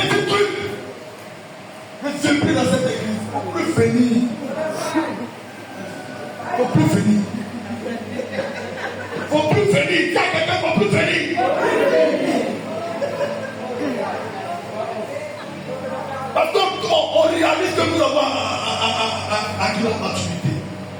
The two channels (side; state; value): both; identical; correlation 1.00